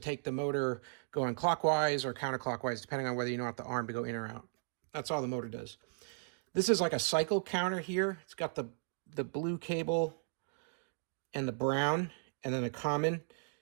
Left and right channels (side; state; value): left; silent; digital silence